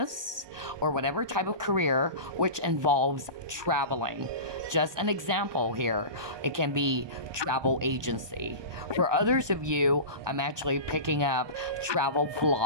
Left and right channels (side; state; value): left; late; 1.2 ms